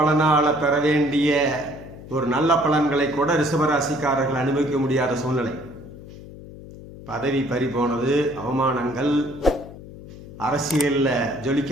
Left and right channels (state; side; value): noise; left; hum, 16 dB below the sound